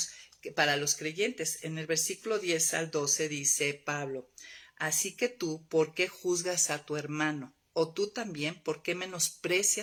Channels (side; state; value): both; identical; correlation 1.00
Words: para los creyentes. En el versículo 10 al 12 dice Pablo, así que tú, ¿por qué juzgas a tu hermano? O tú también, ¿por qué